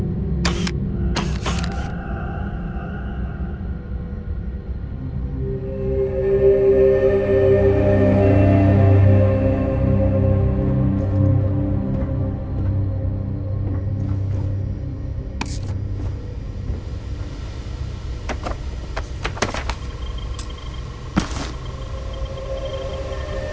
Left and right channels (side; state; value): both; identical; correlation 1.00